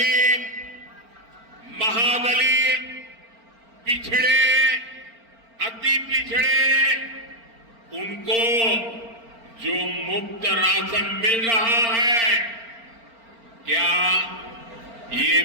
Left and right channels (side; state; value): left; late; 4.4 ms